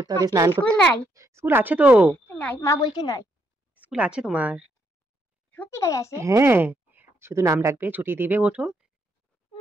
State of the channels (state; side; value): normal; both; correlation 0.75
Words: হবে, স্নান স্কুল করতে। নাই। স্কুল আছে তো। নাই মা বলছে নাই। স্কুল আছে তোমার। সত্যি করে আছে? হ্যাঁ, শুধু নাম ডাকবে, ছুটি দিবে, ওঠো।